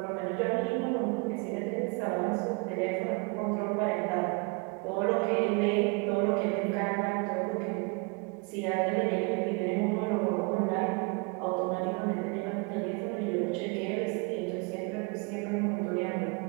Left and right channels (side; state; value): left; quieter; 31.1 dB